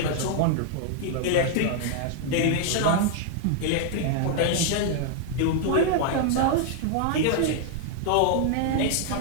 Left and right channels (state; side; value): different; both; correlation 0.00